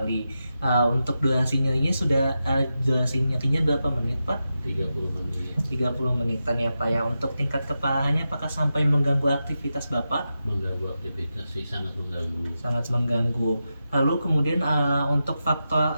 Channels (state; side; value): inverted; both; correlation -0.90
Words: Untuk durasi nyerinya durasi nyerinya berapa menit Pak? 30 menit. 30 menitan ya Pak ya. Untuk tingkat keparahannya apakah sampai mengganggu aktivitas Bapak? Mengganggu aktivitas sih, sangat mengganggu. Sangat mengganggu. Lalu kemudian untuk faktor